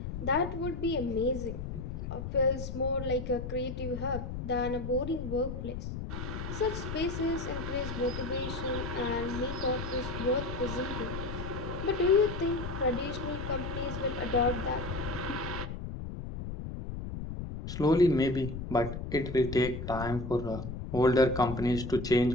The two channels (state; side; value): noise; left; rumble, 6 dB below the sound